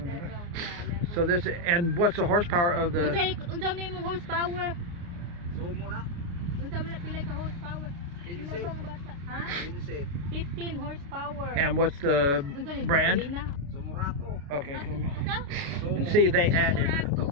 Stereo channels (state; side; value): late; left; 29 ms